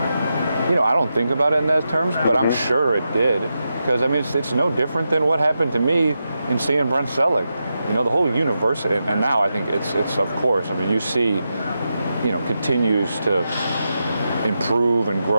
You know, I don't think about it in those terms, but I'm sure it did. Because, I mean, it's no different than what happened to me in seeing Brent Selleck. You know, the whole university, and now I think it's of course, I mean, UC, you know, continues to improve and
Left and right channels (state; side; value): inverted; both; correlation -0.88